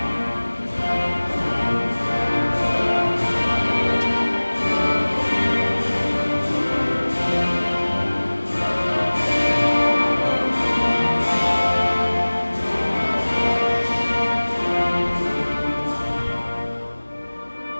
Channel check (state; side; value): inverted; both; correlation -1.00